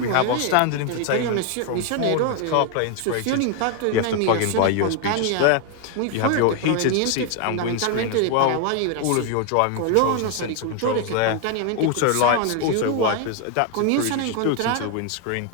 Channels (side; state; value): both; different; correlation 0.01